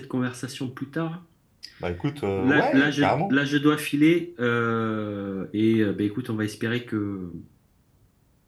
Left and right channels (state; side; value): identical; both; correlation 1.00